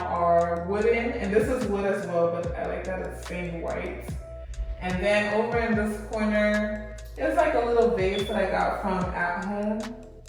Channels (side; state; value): both; identical; correlation 1.00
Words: are wooden, and this is wood as well, but I like that it's stained white. And then over in this corner, it's like a little vase that I got from At Home,